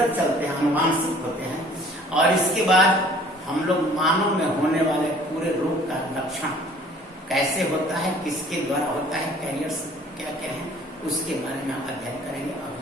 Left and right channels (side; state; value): both; normal; correlation 0.53